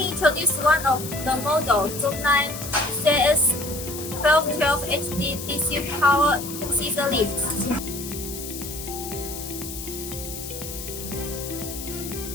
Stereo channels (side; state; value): left; noise; hiss, 9 dB below the sound